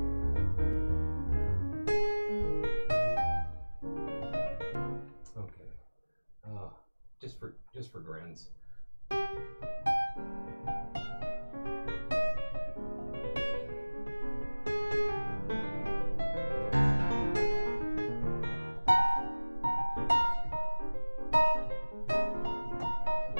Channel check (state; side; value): inverted; both; correlation -1.00